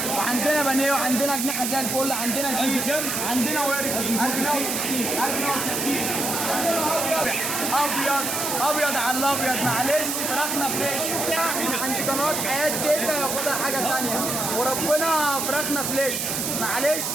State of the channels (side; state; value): right; noise; hiss, 1 dB below the sound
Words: وعندنا بانيه وعندنا اجنحه زي الفل، عندنا شيش، عندنا ورك 1060 ابيض ابيض على الابيض. معلش فراخنا فريش من عند قناه حياه تيتا، ياخدها حاجه ثانيه وربنا فراخنا فريش. معلش